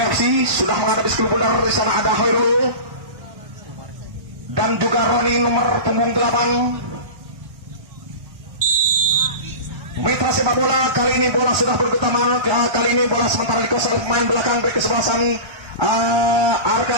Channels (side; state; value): left; late; 1.2 ms